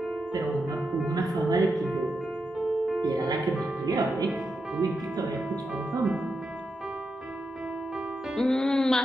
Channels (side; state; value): both; normal; correlation 0.86